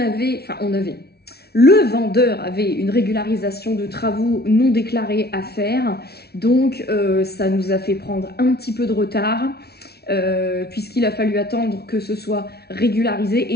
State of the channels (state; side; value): late; right; 0.46 ms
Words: le vendeur avait une régularisation de travaux non déclarés à faire, donc ça nous a fait prendre un petit peu de retard puisqu'il a fallu attendre que ce soit régularisé,